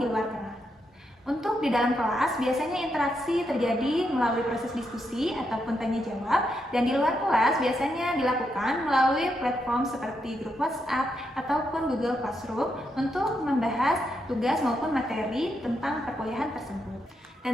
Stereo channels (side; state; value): both; normal; correlation 0.81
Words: di luar kelas. Untuk di dalam kelas, biasanya interaksi terjadi melalui proses diskusi ataupun tanya jawab, dan di luar kelas biasanya dilakukan melalui platform seperti grup WhatsApp ataupun Google Classroom untuk membahas tugas maupun materi tentang perkuliahan tersebut.